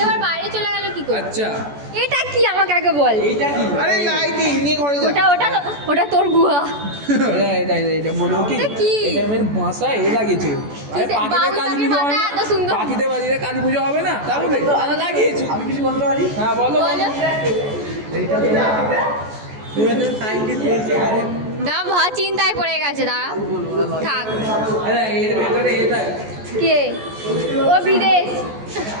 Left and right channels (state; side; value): late; left; 14 ms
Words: এবার বাইরে চলে গেল কি করে? আচ্ছা এটা কি আমাকে আগে বল। আরে লাইটিং নিয়ে ঘরে যা ওটা ওটা ওটা তোর গুহা। এটা বলবো কি এটা কি? এটা আমার বাসায় এ লাগিয়েছে আরে পাখিদের কালী পুজো হয় না এত সুন্দর। পাখিদের বাড়িতে কালী পুজো হবে না তাহলে তারা লাগিয়েছে আমি কিছু বলতে পারি হ্যাঁ বলো বলো না, ভা চিন্তায় পড়ে গেছে, দাঁড়া থাক। এর ভেতরে এটা কে ও বিদেশ?